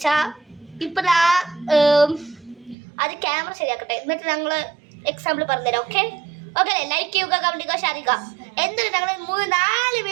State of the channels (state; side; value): drops out; left; at 2.8 s